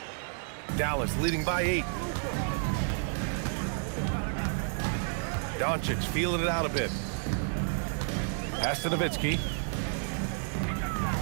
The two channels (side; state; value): left; silent; 57 dB below the other